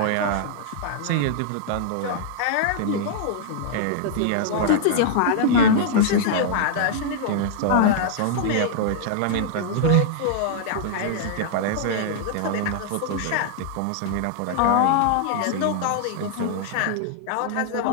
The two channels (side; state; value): both; different; correlation -0.01